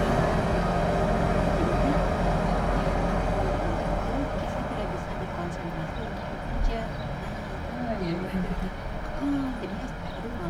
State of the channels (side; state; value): both; identical; correlation 1.00